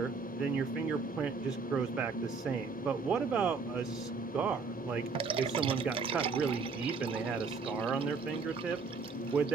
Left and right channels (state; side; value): quieter; left; 4.7 dB